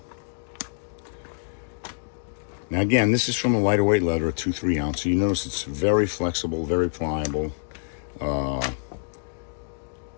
Now again, this is from a lighter weight leather, a 2/3 ounce. So you notice it's very flexible, very pliable.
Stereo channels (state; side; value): silent; right; digital silence